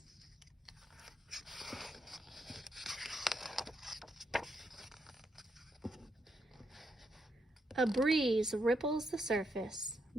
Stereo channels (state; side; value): normal; both; correlation 0.79